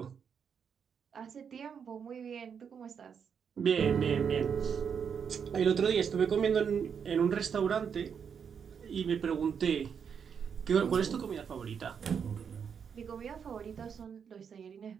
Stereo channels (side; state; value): left; quieter; 7.0 dB